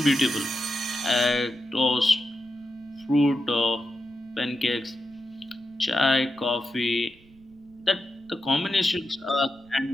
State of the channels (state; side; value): noise; right; rumble, 28 dB below the sound